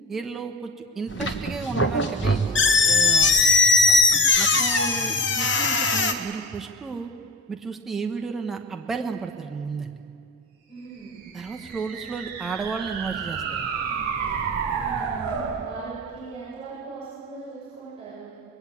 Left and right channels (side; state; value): both; normal; correlation 0.32